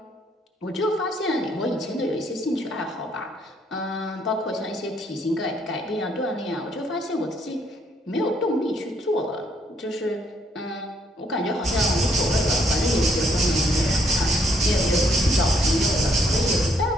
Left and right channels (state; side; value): normal; both; correlation 0.69